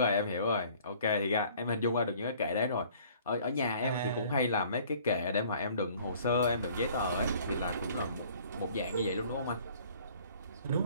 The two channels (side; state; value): both; inverted; correlation -0.54